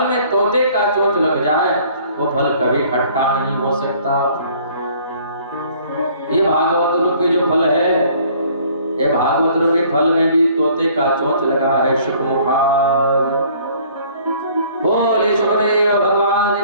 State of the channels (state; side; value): inverted; both; correlation -0.56